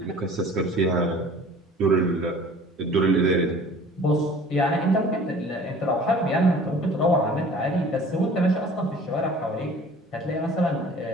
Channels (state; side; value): normal; both; correlation 0.47